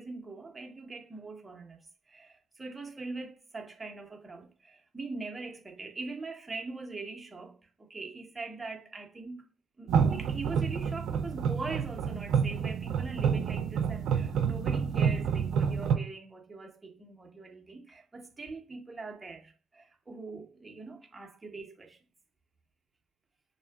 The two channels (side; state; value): left; quieter; 6.1 dB